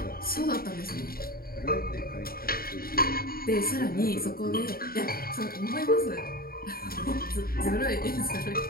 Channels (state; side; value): late; right; 0.43 ms